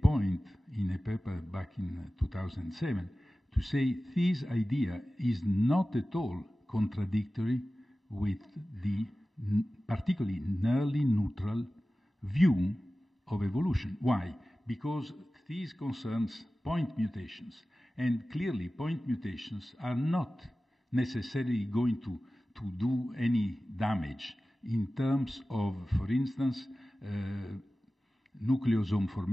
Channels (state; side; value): normal; both; correlation 0.96